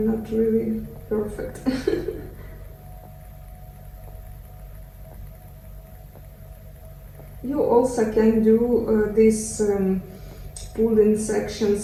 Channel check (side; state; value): both; identical; correlation 1.00